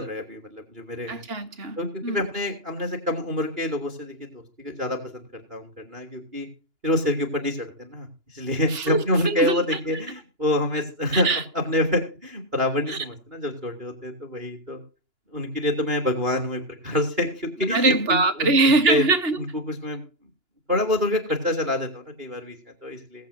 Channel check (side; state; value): left; late; 2.9 ms